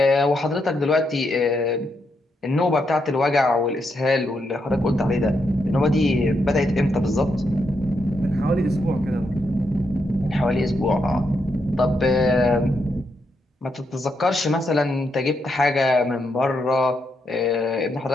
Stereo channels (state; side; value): normal; both; correlation 0.81